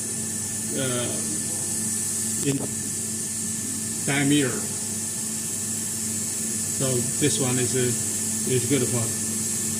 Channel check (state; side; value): identical; both; correlation 1.00